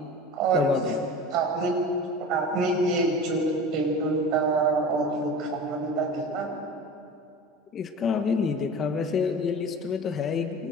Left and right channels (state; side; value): normal; both; correlation 0.35